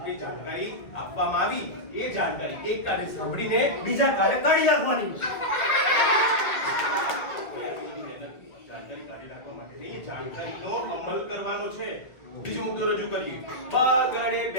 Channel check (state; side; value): late; right; 2.1 ms